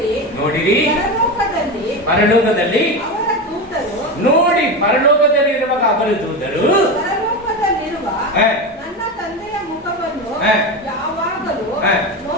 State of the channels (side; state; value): both; normal; correlation 0.19